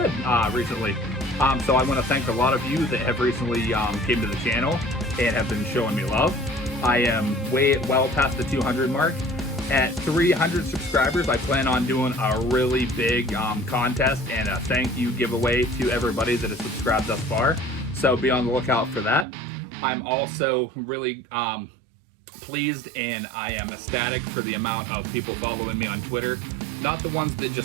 recently. So I want to thank a lot of you that have recently came to the channel and have been showing me love. I am well past the 200 mark. At 300 subscribers, I plan on doing a really big contest and a thank you giveaway to everybody that has subscribed thus far. So be on the lookout for that. I'm also really pleased, and I am ecstatic for the amount of people following me on Twitter. Not the ones that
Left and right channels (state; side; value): drops out; left; at 19.2 s